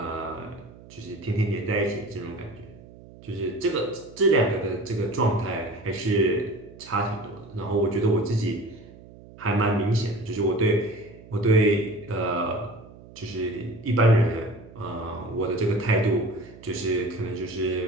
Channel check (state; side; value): noise; right; hum, 20 dB below the sound